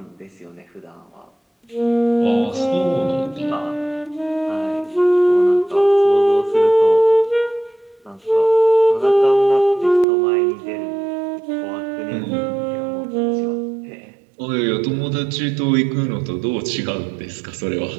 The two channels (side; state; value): left; drops out; at 10.1 s